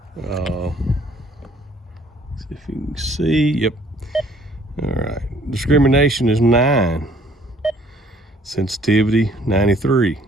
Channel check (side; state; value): both; normal; correlation 0.59